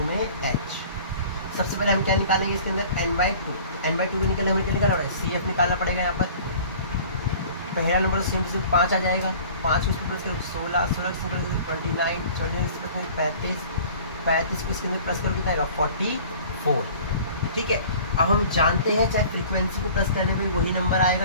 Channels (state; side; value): inverted; both; correlation -0.46